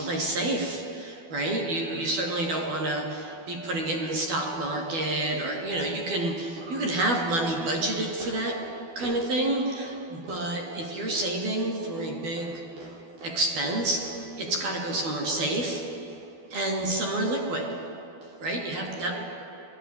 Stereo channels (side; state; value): left; late; 12 ms